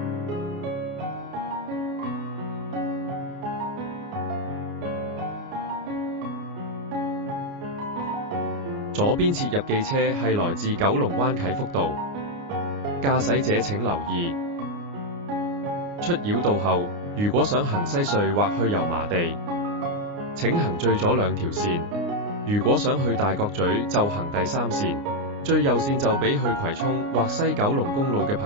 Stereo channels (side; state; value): left; late; 29 ms